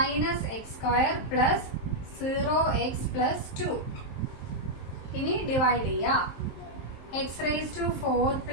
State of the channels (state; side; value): late; right; 23 ms